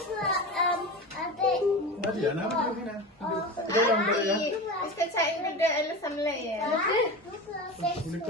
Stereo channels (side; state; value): both; normal; correlation 0.27